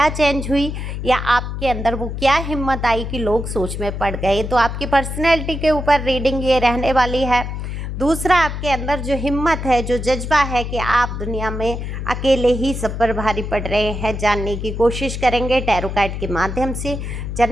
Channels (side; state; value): left; noise; hum, 5 dB below the sound